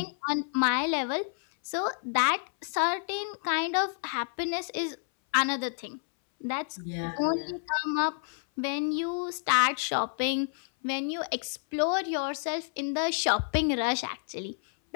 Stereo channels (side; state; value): right; silent; 58 dB below the other